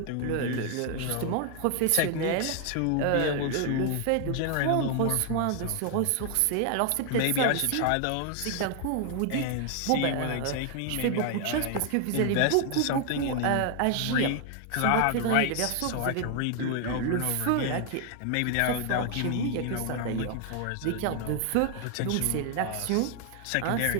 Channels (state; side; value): different; both; correlation 0.00